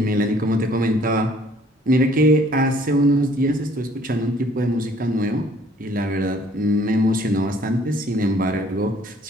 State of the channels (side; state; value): both; normal; correlation 0.58